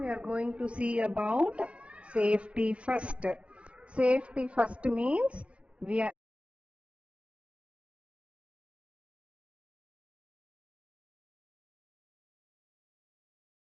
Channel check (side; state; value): left; late; 0.061 ms